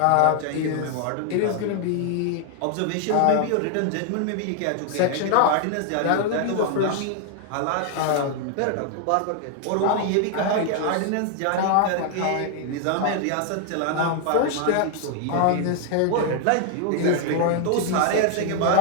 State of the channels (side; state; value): both; different; correlation 0.00